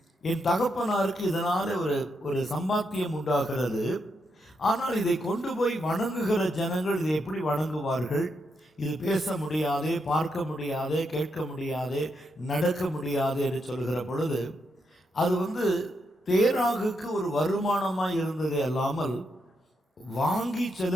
என் தகப்பனாருக்கு இதனால் ஒரு சம்பாத்தியம் உண்டாகிறது, ஆனால் இதை கொண்டு போய் வணங்குகிற ஜனங்கள் இதை எப்படி வணங்குவார்கள்? இது பேச முடியாதே, பார்க்க முடியாதே, கேட்க முடியாதே, நடக்க முடியாது என்று சொல்கிற பொழுது அது வந்து தேராகுக்கு ஒரு வருமானமாக இருந்ததே அல்லாமல் வாங்கி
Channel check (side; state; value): both; normal; correlation 0.81